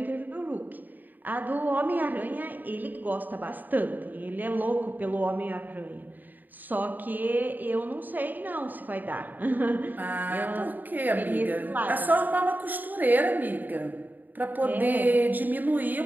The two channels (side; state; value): left; late; 0.087 ms